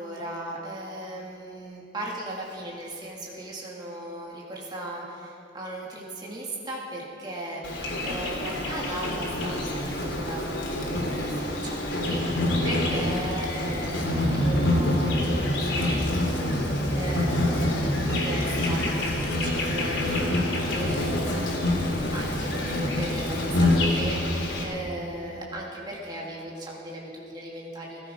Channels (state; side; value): normal; both; correlation 0.58